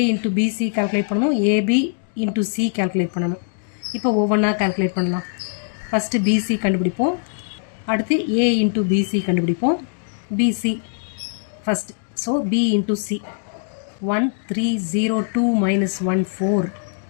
இன்ட்டு பிசி கால்குலேட் பண்ணணும், ஏபி இன்ட்டு சி கால்குலேட் பண்ணணும். இப்போ ஒவ்வொன்றா கால்குலேட் பண்ணலாம். ஃபஸ்ட்டு பிசி கண்டுபிடிப்போம், அடுத்து ஏ இன்ட்டு பிசி கண்டுபிடிப்போம். BC first. So B into C 1302 minus 14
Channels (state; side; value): silent; right; digital silence